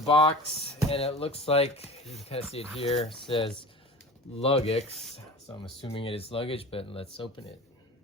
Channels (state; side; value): normal; both; correlation 0.37